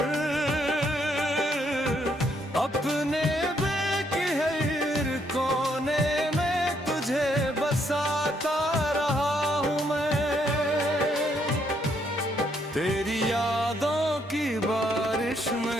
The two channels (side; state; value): both; normal; correlation 0.72